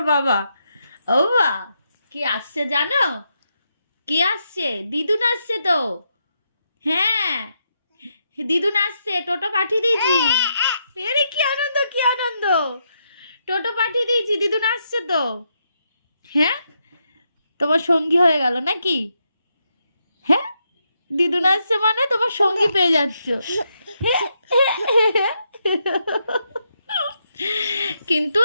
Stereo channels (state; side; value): inverted; both; correlation -0.81